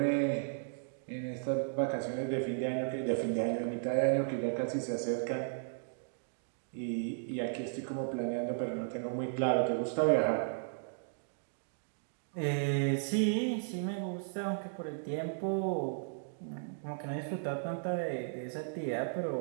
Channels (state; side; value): silent; left; digital silence